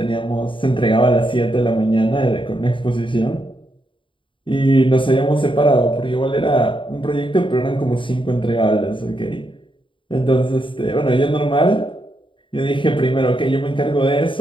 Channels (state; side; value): late; right; 0.25 ms